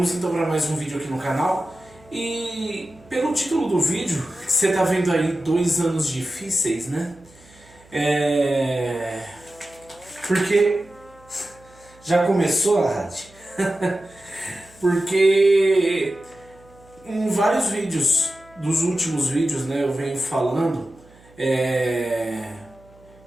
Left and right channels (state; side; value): noise; right; hum, 27 dB below the sound